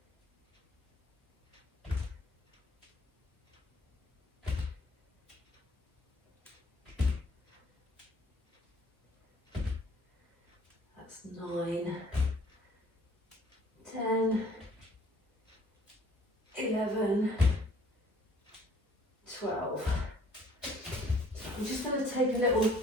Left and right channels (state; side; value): normal; both; correlation 0.57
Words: That's 9, 10, 11, 12. I'm just going to take a little